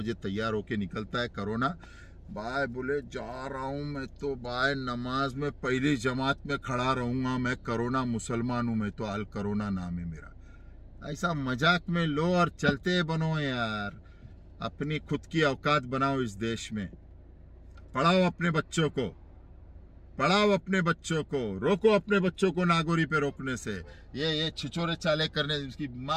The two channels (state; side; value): identical; both; correlation 1.00